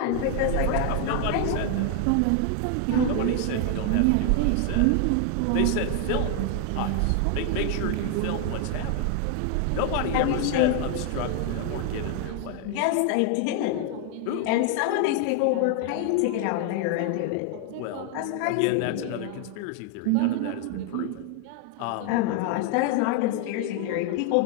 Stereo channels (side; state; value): both; different; correlation 0.00